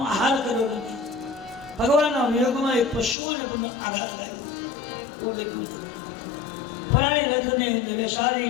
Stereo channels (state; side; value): drops out; right; at 3.2 s